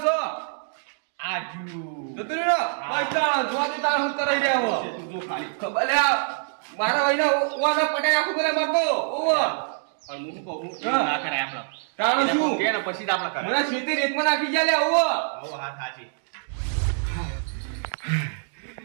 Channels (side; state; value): left; silent; digital silence